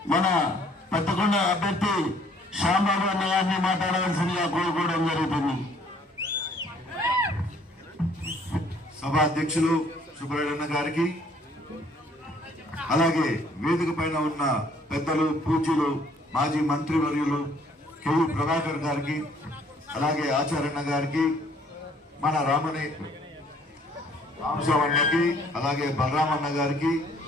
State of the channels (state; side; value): normal; both; correlation 0.61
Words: మన పెద్దకొండ అభ్యర్థి శ్యాంబాబు అన్న గారిని మాట్లాడవలసిందిగా కోరుకోవడం జరుగుతుంది. సభ అధ్యక్షులు సుబ్రహ్మణ్య గారికి, అలాగే వేదిక పైన ఉన్న పెద్దలు, పూజ్యులు, మాజీ మంత్రివర్యులు కేయూ ప్రభాకర్ గారికి, అలాగే ఆచార్యన్న గారికి, మన రామశవన్నకి, అలాగే బలరామన్న గారికి,